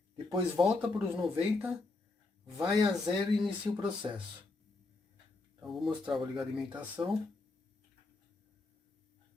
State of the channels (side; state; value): right; quieter; 3.3 dB